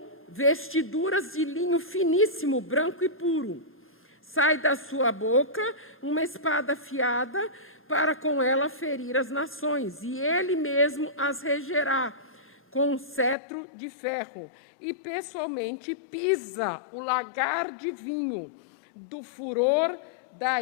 vestiduras de linho finíssimo, branco e puro. Sai da sua boca uma espada afiada, para com ela ferir as nações, e ele mesmo as regerá com um cetro de ferro, e pessoalmente pisa o lagar de vinho do furor da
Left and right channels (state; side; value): drops out; right; at 13.4 s